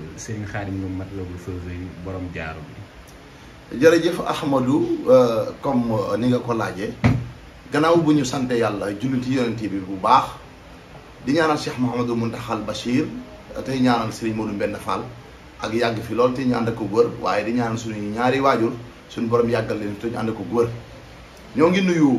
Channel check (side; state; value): both; identical; correlation 1.00